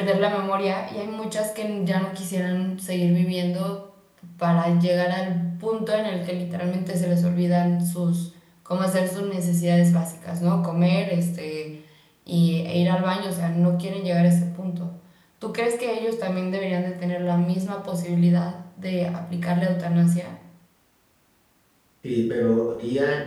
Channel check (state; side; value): identical; both; correlation 1.00